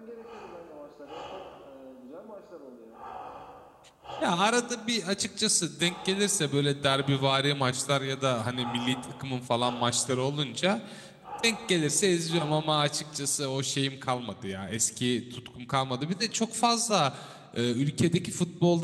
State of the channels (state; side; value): identical; both; correlation 1.00